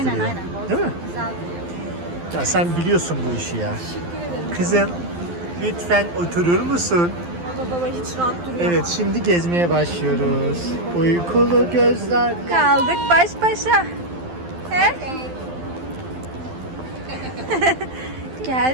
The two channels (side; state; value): left; late; 12 ms